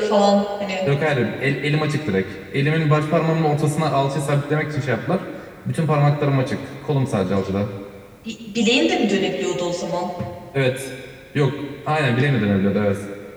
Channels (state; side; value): identical; both; correlation 1.00